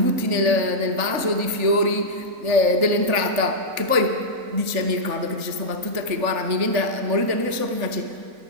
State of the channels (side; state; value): left; late; 3.4 ms